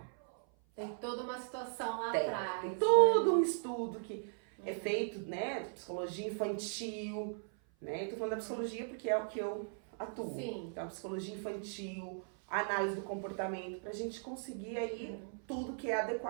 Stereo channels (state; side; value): silent; left; 53 dB below the other